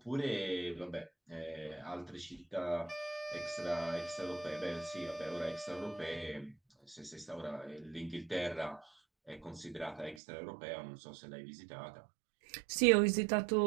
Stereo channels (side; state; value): left; drops out; at 10.2 s